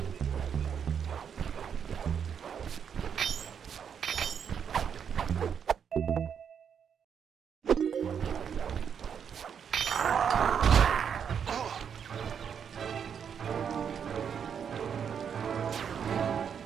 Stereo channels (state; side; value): quieter; left; 7.6 dB